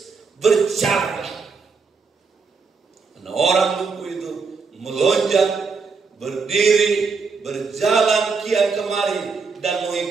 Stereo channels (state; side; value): quieter; left; 4.9 dB